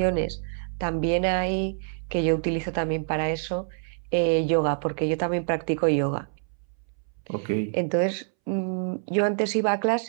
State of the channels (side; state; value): left; silent; 61 dB below the other